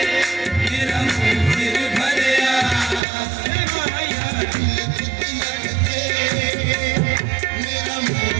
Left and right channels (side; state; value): left; drops out; at 3.0 s